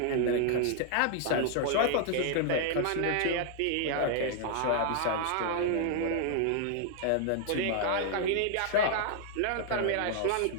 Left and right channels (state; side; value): different; both; correlation 0.00